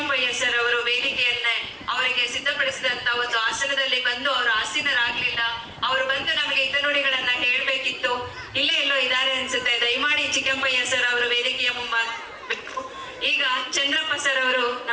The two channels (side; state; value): both; identical; correlation 1.00